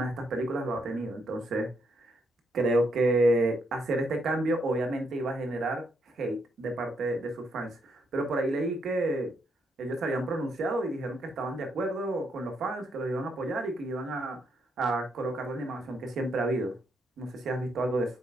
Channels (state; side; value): normal; both; correlation 0.76